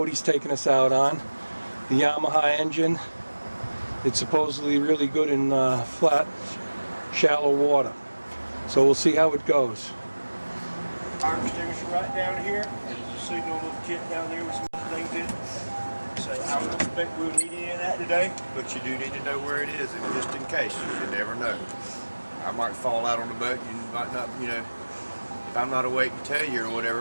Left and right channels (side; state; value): both; inverted; correlation -1.00